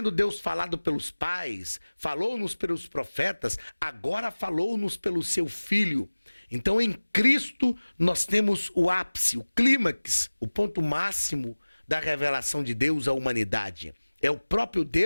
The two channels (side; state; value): both; inverted; correlation -1.00